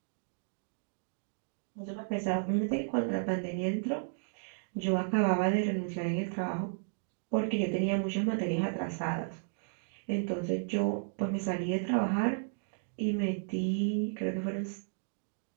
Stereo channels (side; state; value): left; silent; digital silence